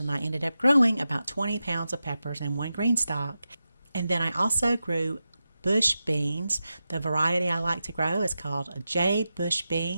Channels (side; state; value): both; inverted; correlation -0.91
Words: I ended up growing about 20 pounds of peppers in one GreenStalk. And then I also grew bush beans. The variety I like to grow is called jade bush